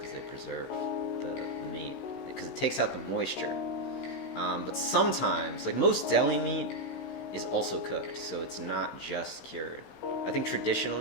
they preserve the meat because it takes out the moisture. But sometimes, like most deli meat is also cooked, so it's not just cured. I think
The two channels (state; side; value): late; right; 16 ms